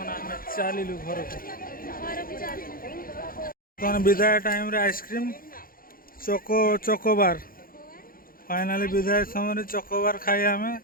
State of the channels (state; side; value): late; right; 0.42 ms